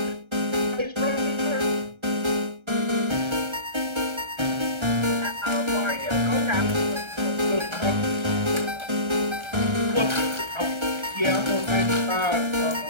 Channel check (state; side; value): late; left; 1.3 ms